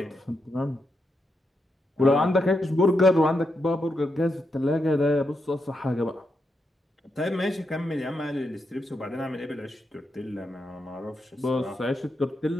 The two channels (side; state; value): both; normal; correlation 0.84